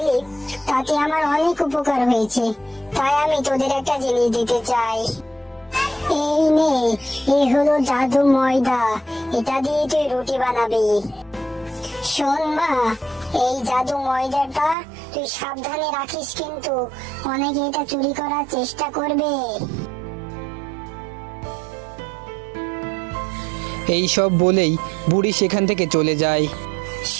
তাতে আমার অনেক উপকার হয়েছে, তাই আমি তোদের একটা জিনিস দিতে চাই। এই নে, এই হলো জাদু ময়দা, এটা দিয়ে তুই রুটি বানাবি। শোন মা, এই জাদু ময়দাটা তুই সাবধানে রাখিস, কিন্তু অনেকে এটা চুরি করার চেষ্টা করবে। এই সব বলেই বুড়ি সেখান থেকে চলে যায়।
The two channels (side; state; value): left; drops out; at 14.8 s